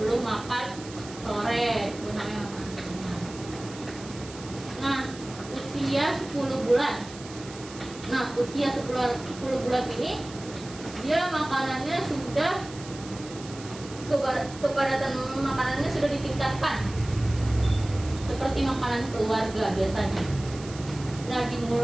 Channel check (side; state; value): right; noise; hiss, 16 dB below the sound